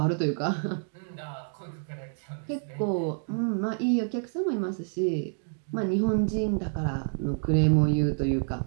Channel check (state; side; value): silent; left; digital silence